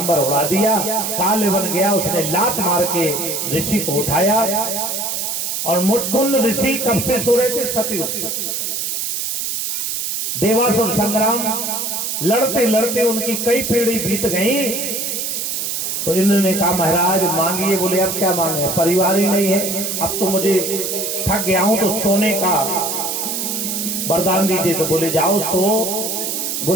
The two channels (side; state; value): right; noise; hiss, 2 dB below the sound